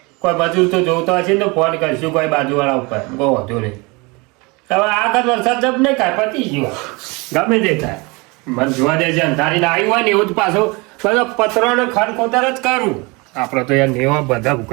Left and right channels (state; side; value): quieter; left; 26.8 dB